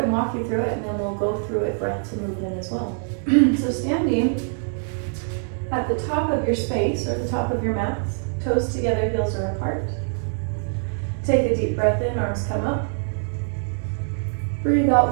and walk you through it, and then we'll go through it breath to movement as well. So standing at the top of your space or the top of your mats, toes together, heels are apart. Take a deep breath in, arms come up. Breathe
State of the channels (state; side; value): silent; left; 63 dB below the other